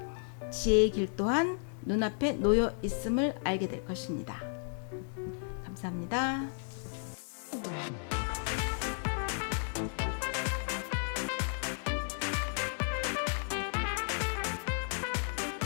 지혜의 길 또한 눈앞에 놓여 있음을 알게 될 것입니다. 감사합니다. 감사합니다.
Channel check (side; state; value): right; silent; 55 dB below the other